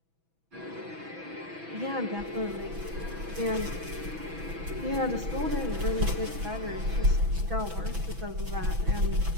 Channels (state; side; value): late; left; 6.1 ms